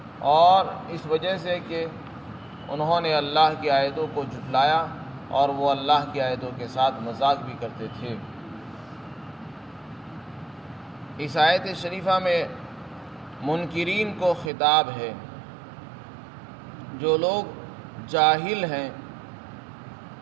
اور اس وجہ سے کہ انہوں نے اللہ کی آیتوں کو جھٹلایا اور وہ اللہ کی آیتوں کے ساتھ مذاق بھی کرتے تھے۔ اس آیت شریفہ میں منکرین کو خطاب ہے۔ جو لوگ جاہل ہیں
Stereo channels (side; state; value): left; drops out; at 14.5 s